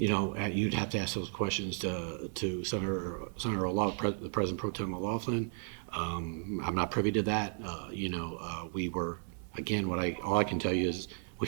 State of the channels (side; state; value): left; silent; 55 dB below the other